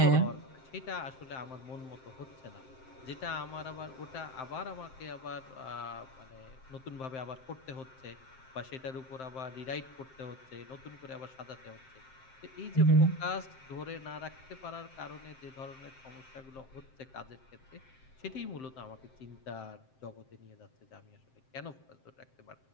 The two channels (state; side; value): late; right; 7.6 ms